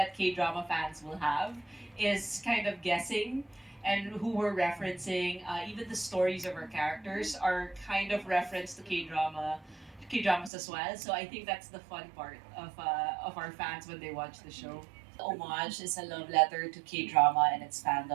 K-drama fans will have, is kind of guessing and who we're referencing. Even the stories of our characters are kind of referenced to K-dramas as well. So I think that's the fun part of our fans when they watch the show. Homage is a love letter to K-drama and its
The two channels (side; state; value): left; drops out; at 10.5 s